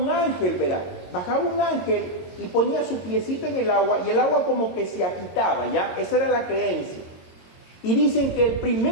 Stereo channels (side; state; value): right; late; 22 ms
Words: ángel, verá, bajaba un ángel y ponía su piecito en el agua, y el agua como que se agitaba, ¿ya? Esa era la creencia. Y dicen que el